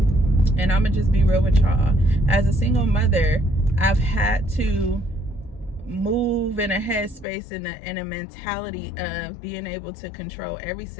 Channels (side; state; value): right; drops out; at 7.2 s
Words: and I'm gonna just be real with y'all, as a single mother, I've had to move in a headspace in a mentality of being able to control every